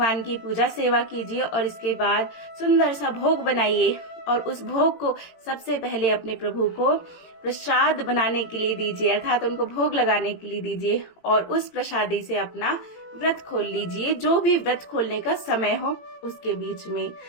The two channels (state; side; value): late; right; 18 ms